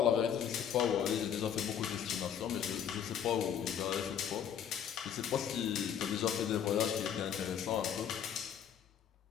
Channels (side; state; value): right; quieter; 8.8 dB